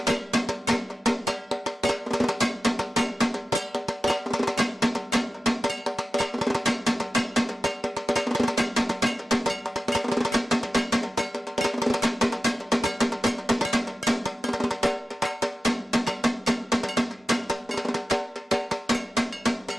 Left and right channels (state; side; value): normal; both; correlation 0.93